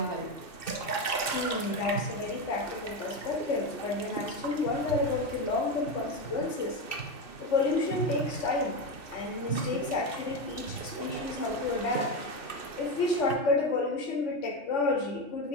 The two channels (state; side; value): late; right; 2.7 ms